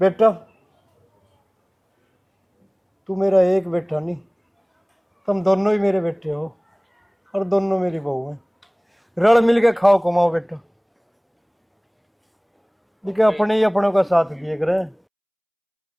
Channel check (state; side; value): identical; both; correlation 1.00